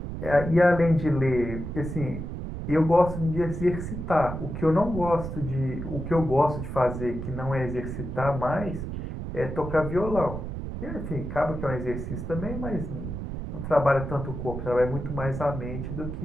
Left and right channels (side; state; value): right; noise; rumble, 6 dB below the sound